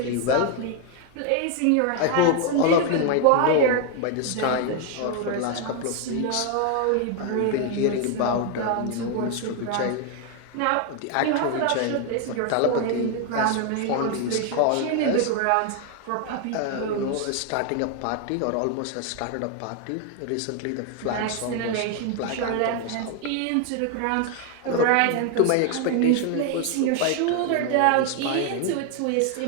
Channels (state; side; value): different; both; correlation 0.01